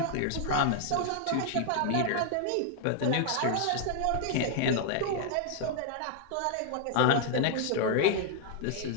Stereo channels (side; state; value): both; different; correlation 0.00